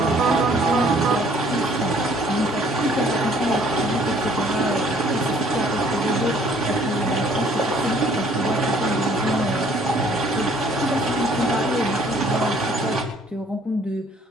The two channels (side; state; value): both; normal; correlation 0.60